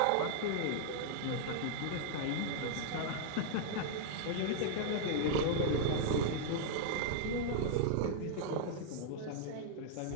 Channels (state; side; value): different; both; correlation -0.01